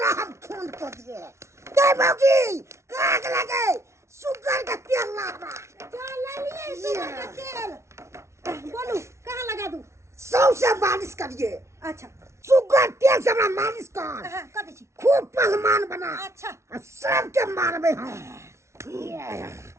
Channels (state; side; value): late; left; 0.13 ms